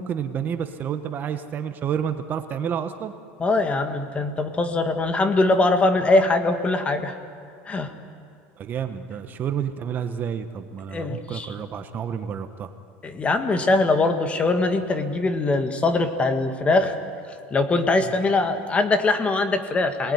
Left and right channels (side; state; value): both; normal; correlation 0.66